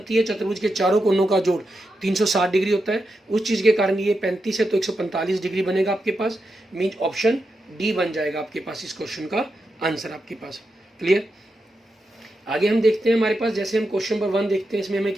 है, चतुर्भुज के चारों कोणों का जोड़ 360 डिग्री होता है, उस चीज़ के कारण ये 35 है तो 145 डिग्री बनेगा आपके पास। मीन्स ऑप्शन डी बन जाएगा आपके पास इस क्वेश्चन का आंसर आपके पास। क्लियर। आगे हम देखते हैं हमारे पास, जैसे हम क्वेश्चन नंबर 1 देखते हैं, इसमें हमें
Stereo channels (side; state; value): both; normal; correlation 0.87